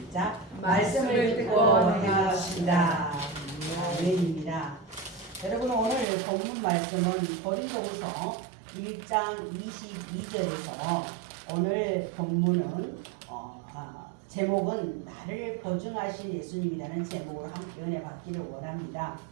말씀을 듣고 행합시다. 아멘입니다. 여러분, 오늘 본문 말씀은 고린도후서 1장 22절에서 오늘 본문은 제목은 나를 보증하신 예수님이라는 제목으로 함께 은혜 받기를 원합니다.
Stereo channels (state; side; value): drops out; left; at 6.1 s